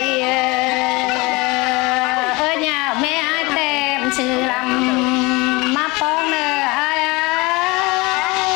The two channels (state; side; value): quieter; right; 24.5 dB